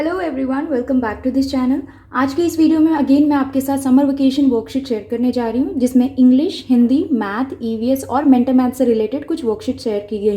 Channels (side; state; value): both; identical; correlation 1.00